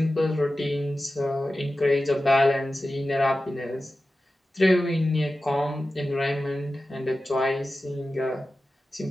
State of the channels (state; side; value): normal; both; correlation 0.94